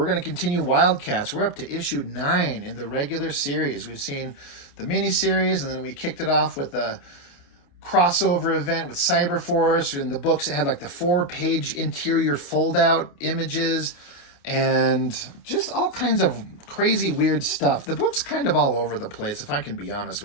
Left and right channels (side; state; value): right; late; 28 ms